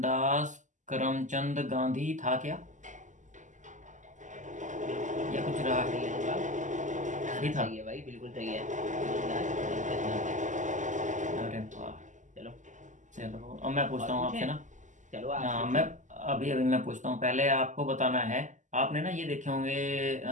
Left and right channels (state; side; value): late; left; 0.36 ms